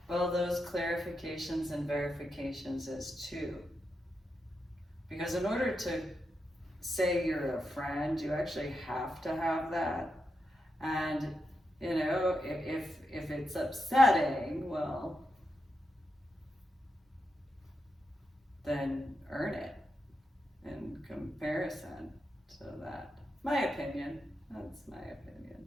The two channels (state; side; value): normal; both; correlation 0.86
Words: well, those clarifications and verifications is too. Because in order to say you're a friend, you actually have to have that. And, if it's upsetting, well, then earn it in comparison to that. My opinion, that's my opinion.